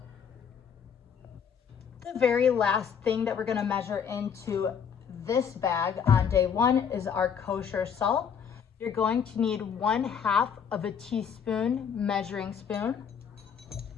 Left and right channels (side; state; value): right; quieter; 7.3 dB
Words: The very last thing that we're going to measure into this bag on day 1 is our kosher salt. You're going to need 1/2 teaspoon measuring spoon.